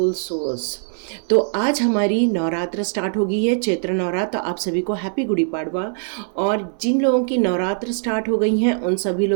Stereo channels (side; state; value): left; silent; 65 dB below the other